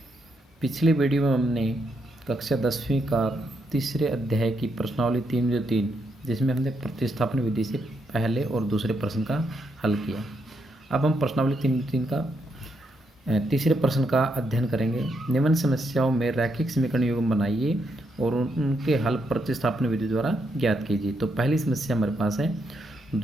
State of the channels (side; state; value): both; normal; correlation 0.79